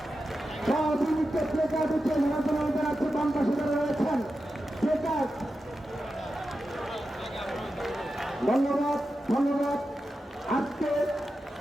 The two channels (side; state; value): both; normal; correlation 0.91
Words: সব ইউনিটে প্লেকার্ড উঠে জনগণ জানাচ্ছে বাম পাশে যারা রয়েছেন প্লেকার্ড। ধন্যবাদ ধন্যবাদ। আজকে